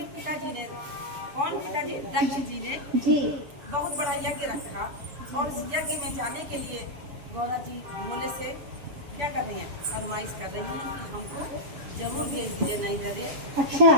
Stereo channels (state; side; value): late; left; 7.0 ms